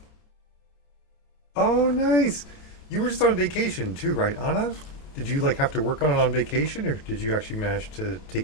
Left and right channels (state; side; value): late; right; 28 ms